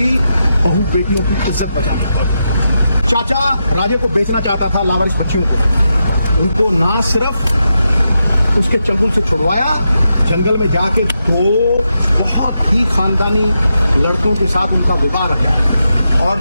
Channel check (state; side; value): inverted; both; correlation -0.86